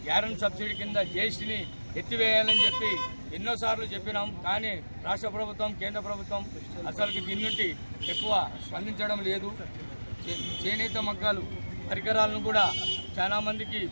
గ్యారెంటీ సబ్సిడీ కింద GSTని ఎత్తివేయాలని చెప్పి ఎన్నోసార్లు చెప్పినాం. కానీ రాష్ట్ర ప్రభుత్వం, కేంద్ర ప్రభుత్వం అసలుకి దీని నుండి ఎక్కువ స్పందించడం లేదు. చేనేత మగ్గాలు పరికరాలను కూడా చాలామందికి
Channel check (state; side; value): inverted; both; correlation -1.00